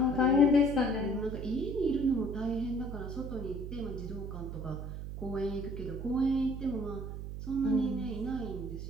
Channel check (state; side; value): noise; right; hum, 7 dB below the sound